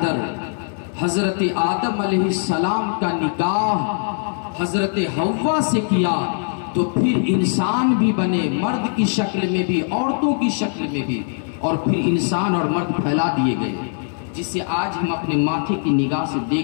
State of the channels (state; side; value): silent; right; digital silence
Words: حضرت آدم علیہ السلام کا نکاح حضرت حوا سے کیا، تو پھر انسان بھی بنے، مرد کی شکل میں بھی، عورتوں کی شکل میں بھی، اور پھر انسان اور مرد پھیلا دیے گئے، جسے آج ہم اپنے ماتھے کی نگاہ سے